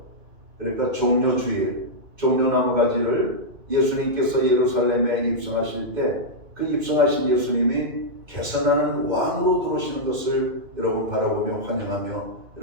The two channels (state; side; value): late; left; 2.6 ms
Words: 그러니까 종려주일, 종려나무 가지를 예수님께서 예루살렘에 입성하실 때 그 입성하신 예수님이 개선하는 왕으로 들어오시는 것을 여러분 바라보며 환영하며